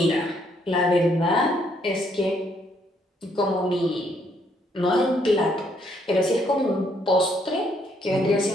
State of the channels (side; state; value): both; normal; correlation 0.70